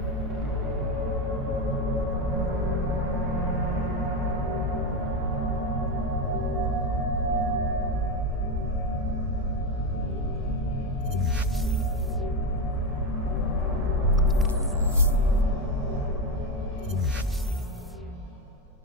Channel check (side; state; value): both; normal; correlation 0.12